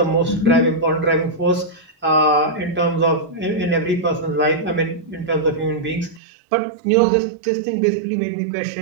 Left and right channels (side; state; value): left; drops out; at 6.2 s